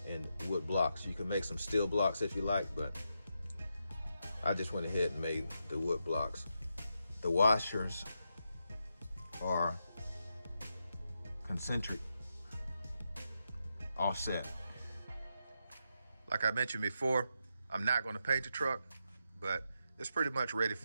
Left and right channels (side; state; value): both; inverted; correlation -0.84